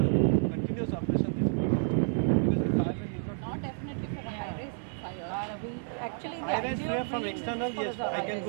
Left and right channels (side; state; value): left; silent; 56 dB below the other